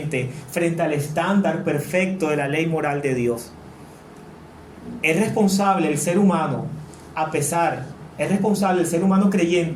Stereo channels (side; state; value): both; identical; correlation 1.00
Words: frente al estándar perfecto de la ley moral de Dios. Es responsable el ser humano, es responsable el ser humano